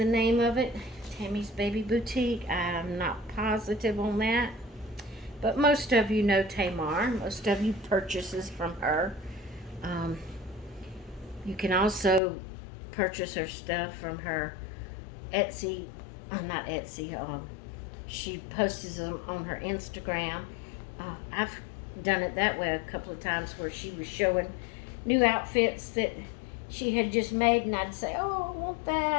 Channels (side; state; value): right; drops out; at 12.2 s